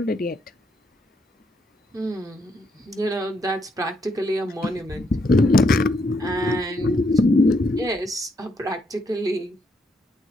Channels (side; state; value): both; normal; correlation 0.76